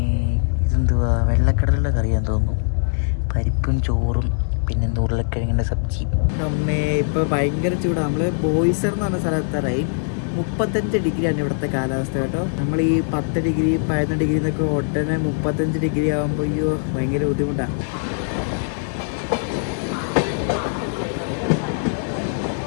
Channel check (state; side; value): silent; right; digital silence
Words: ഇതെന്തുവാ വെള്ളക്കടലിൻ്റെ കറിയാന്ന് തോന്നുന്നു. പരിപ്പും ചോറും, പിന്നെ ഉരുളക്കിഴങ്ങിൻ്റെ സബ്ജി. അമ്മേ ഇപ്പോൾ ഭയങ്കര ചൂടാണ്. നമ്മൾ ബോയ്സർ എന്ന് പറഞ്ഞ സ്ഥലത്തായി 35 ഡിഗ്രിയാണ് ഇവിടുത്തെ കാലാവസ്ഥ കേട്ടോ. നമ്മൾ ഈ 10 ഡിഗ്രി 11 ഡിഗ്രി എന്നൊക്കെ ഉടനെ 35 ഡിഗ്രി ആകുമ്പോൾ അയ്യോ ഭയങ്കര ബുദ്ധിമുട്ടാണ്.